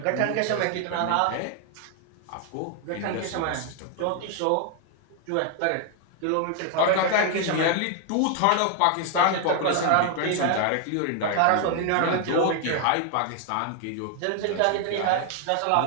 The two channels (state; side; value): different; both; correlation 0.00